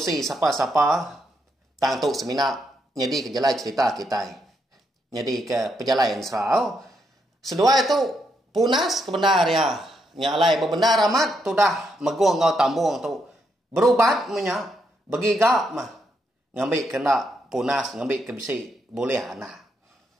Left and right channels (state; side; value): normal; both; correlation 0.78